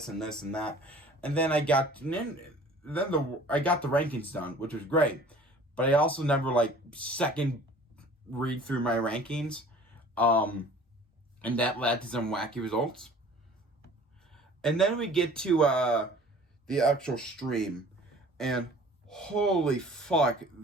and this and that. And then I got the rankings done, which was great. But I also never second read through my rankings. And that led to some wacky results. And then we get to the actual stream. And holy fuck,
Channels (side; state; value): both; normal; correlation 0.48